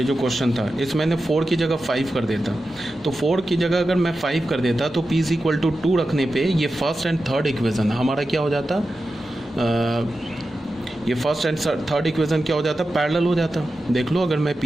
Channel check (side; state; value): both; normal; correlation 0.92